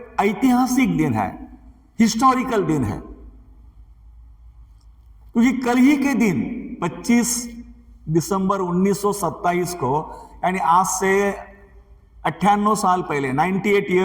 ऐतिहासिक दिन है, हिस्टोरिकल दिन है। क्योंकि कल ही के दिन 25 दिसंबर 1927 को, यानी आज से 98 साल पहले, 98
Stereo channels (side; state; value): both; identical; correlation 1.00